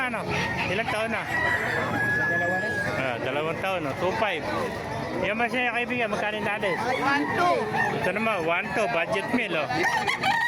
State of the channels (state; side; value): identical; both; correlation 1.00